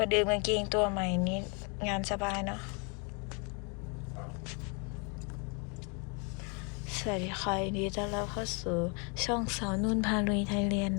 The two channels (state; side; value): quieter; right; 34.9 dB